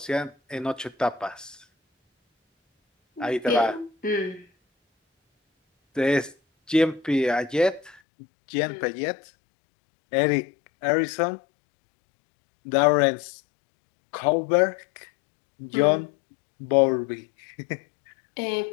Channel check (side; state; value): right; drops out; at 8.0 s